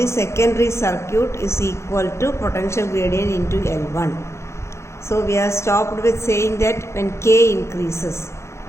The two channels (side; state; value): right; late; 0.13 ms